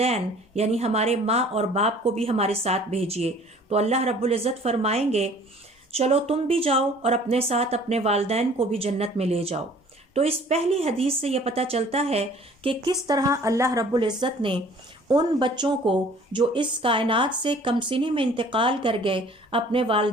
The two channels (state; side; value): normal; both; correlation 0.52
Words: یعنی ہمارے ماں اور باپ کو بھی ہمارے ساتھ بھیجیے۔ تو اللہ رب العزت فرمائیں گے چلو تم بھی جاؤ اور اپنے ساتھ اپنے والدین کو بھی جنت میں لے جاؤ۔ تو اس پہلی حدیث سے یہ پتہ چلتا ہے کہ کس طرح اللہ رب العزت نے ان بچوں کو جو اس کائنات سے کم سنی میں انتقال کر گئے اپنے